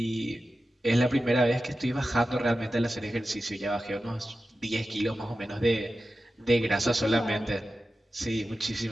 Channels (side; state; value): both; normal; correlation 0.93